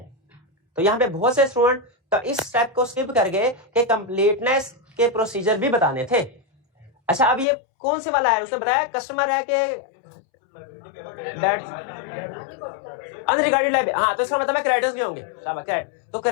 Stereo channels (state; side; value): drops out; right; at 7.5 s